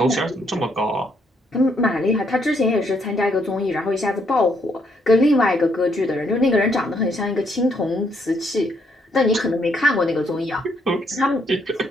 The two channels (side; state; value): both; normal; correlation 0.73